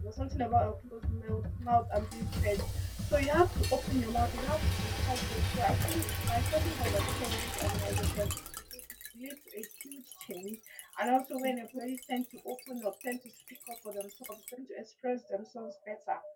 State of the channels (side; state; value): both; identical; correlation 1.00